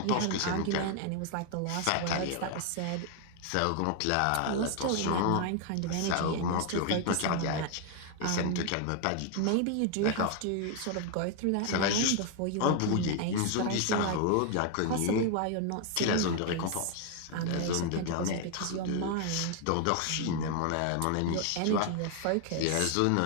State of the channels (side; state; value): both; different; correlation 0.00